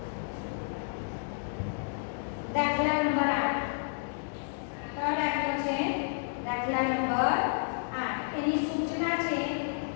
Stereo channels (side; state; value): right; silent; digital silence